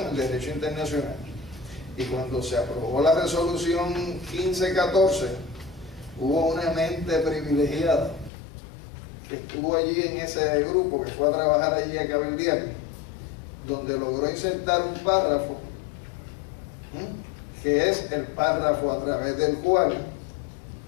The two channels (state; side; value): drops out; right; at 8.3 s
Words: derecho internacional. Y cuando se aprobó la resolución 1514, hubo una mente privilegiada que estuvo allí en ese grupo, que fue a trabajar allí a cabildear, donde logró insertar un párrafo, que es el párrafo a través del cual,